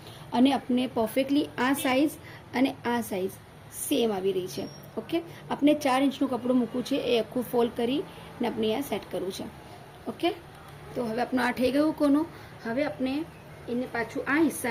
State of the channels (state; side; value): identical; both; correlation 1.00